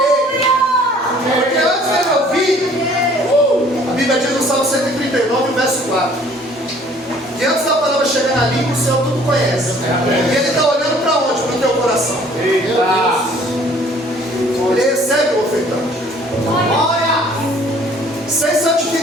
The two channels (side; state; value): both; normal; correlation 0.56